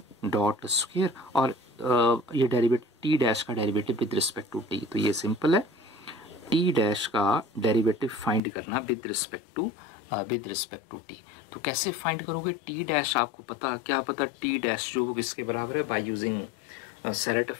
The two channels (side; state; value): right; drops out; at 8.4 s